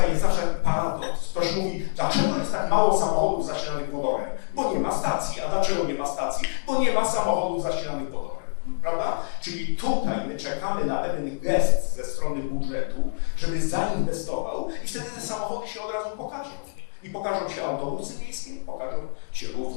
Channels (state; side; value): silent; right; digital silence